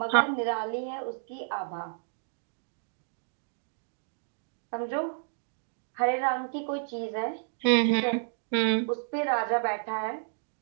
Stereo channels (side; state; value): left; silent; digital silence